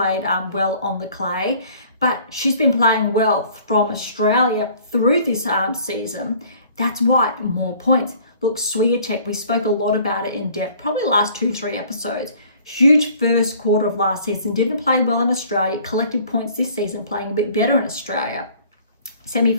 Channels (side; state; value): both; inverted; correlation -0.53